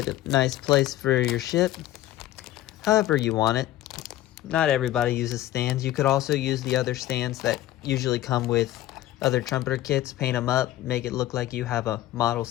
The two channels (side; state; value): right; quieter; 14.6 dB